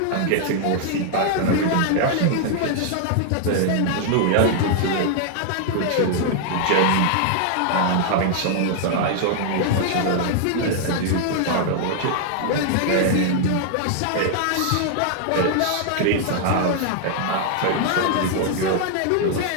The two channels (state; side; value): different; both; correlation 0.00